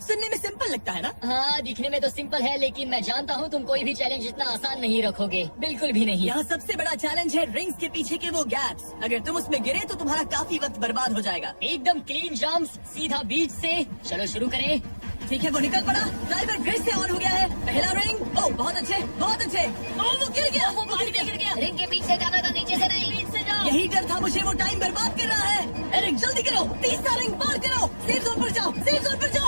सुनने में सिंपल लगता है ना? हाँ, दिखने में तो सिंपल है, लेकिन मैं जानता हूँ तुम कोई भी चैलेंज इतना आसान नहीं रखोगे। बिल्कुल भी नहीं। यहाँ सबसे बड़ा चैलेंज है रिंग्स के पीछे के वो गैप्स। अगर तुम उसमें गिरे तो तुम्हारा काफी वक्त बर्बाद हो जाएगा। एकदम क्लीन जंप्स, सीधा बीच से। चलो शुरू करें। ठीक है, वो निकल पड़ा। टाइमर फिर से ऑन हो गया है। पहला रिंग। ओह, बहुत अच्छे, बहुत अच्छे। ओह, वो गिर गया। वो पानी में गिर गया। रिंग के पीछे जाना था, नीचे से नहीं। बीच से जाओ। यही डर था मुझे, वो टाइम बर्बाद कर रहा है। एरिक, जल्दी करो। तीसरा रिंग पार करो। सेफ जोन पर जाओ, सेफ जोन पर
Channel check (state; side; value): inverted; both; correlation -1.00